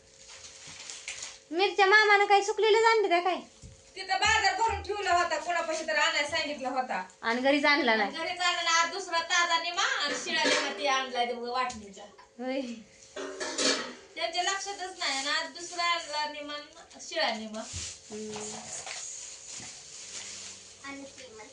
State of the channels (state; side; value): identical; both; correlation 1.00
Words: मिरच्या मामानं काही सुकलेलं आणलं त्या काय. तिथं बाजार भरून ठेवला होता. कोणापाशी तर आणायला सांगितला होता. आणि घरीच आणला नाही. घरी चालला आज दुसरा ताजा निमा आणि शिळा निमा ती आणलाय ते वाटणीचा. होय. त्यांच्या लक्षातच नाही. आणि आज दुसरा आणला निमा शिळा निमा.